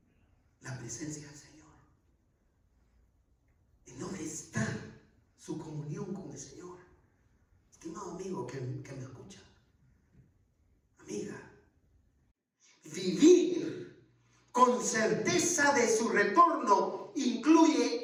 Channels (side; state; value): both; identical; correlation 1.00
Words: la presencia del Señor? ¿En dónde está su comunión con el Señor? Estimado amigo que me escucha, amiga, vivir con certeza de su retorno